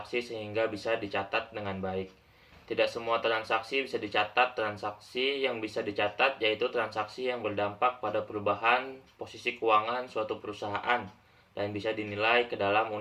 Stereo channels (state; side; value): identical; both; correlation 1.00